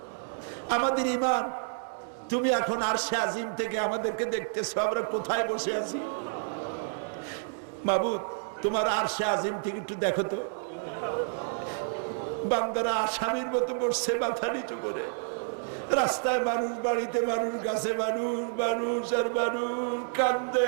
আমাদের ঈমান তুমি এখন আরশে আজিম থেকে আমাদেরকে দেখতেছো, আমরা কোথায় বসে আছি। মাবুদ তোমার আরশে আজিম থেকে একটু দেখো তো, বান্দারা আসামির মতো বসছে মাথা নিচু করে। রাস্তায় মানুষ, বাড়িতে মানুষ, গাছে মানুষ, মানুষ আর মানুষ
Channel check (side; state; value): left; silent; digital silence